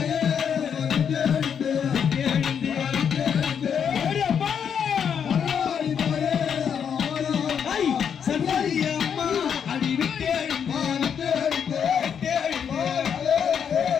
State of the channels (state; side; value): quieter; right; 7.6 dB